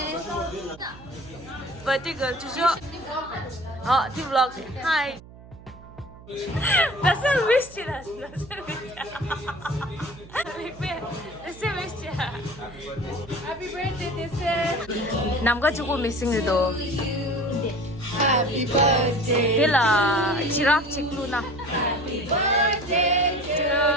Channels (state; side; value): noise; right; hum, 19 dB below the sound